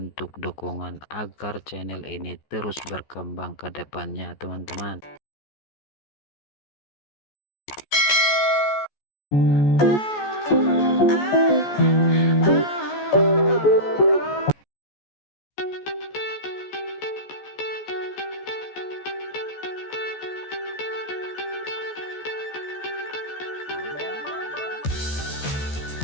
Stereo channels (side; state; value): right; late; 14 ms